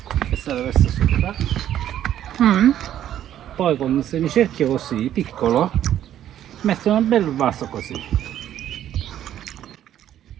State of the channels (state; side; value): quieter; left; 11.3 dB